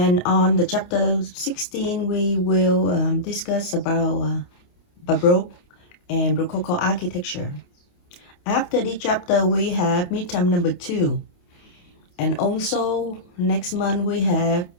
on the chapter 16, we will discuss about Baroque and Rococo architecture. After this chapter, we have midterm number 2. And also next month, we have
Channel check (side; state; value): right; late; 28 ms